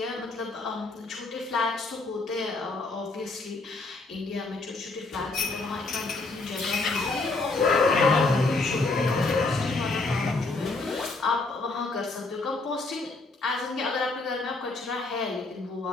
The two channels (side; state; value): right; quieter; 3.4 dB